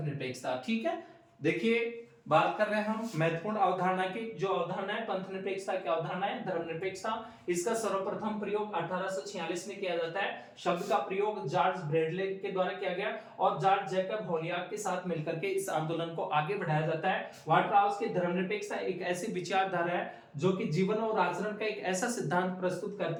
निरपेक्षता, ठीक है। देखिए बात कर रहे हैं हम महत्वपूर्ण अवधारणा की। जो अवधारणा है पंथ निरपेक्षता की अवधारणा है धर्मनिरपेक्षता। इसका सर्वप्रथम प्रयोग 1846 में किया जाता है। शब्द का प्रयोग जॉर्ज ब्रैडले के द्वारा किया गया और जॉर्ज जैकब होलियाक के साथ मिलकर के इस आंदोलन को आगे बढ़ाया जाता है। वाटरहाउस की धर्मनिरपेक्षता एक ऐसी विचारधारा है जो कि जीवन और आचरण का एक ऐसा सिद्धांत प्रस्तुत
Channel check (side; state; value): both; identical; correlation 1.00